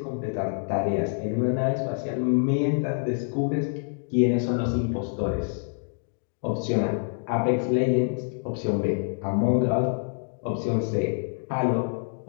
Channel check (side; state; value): right; silent; digital silence